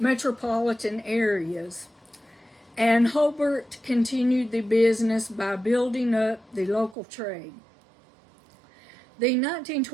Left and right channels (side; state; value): left; drops out; at 7.0 s